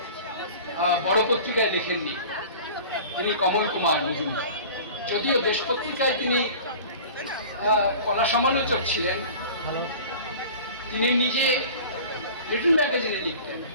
বড় পত্রিকায় লেখেননি, তিনি কমল কুমার মজুমদার। যদিও দেশ পত্রিকায় তিনি কলা সমালোচক ছিলেন, তিনি নিজে লিটল ম্যাগাজিনে লিখতেন।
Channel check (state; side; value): inverted; both; correlation -0.40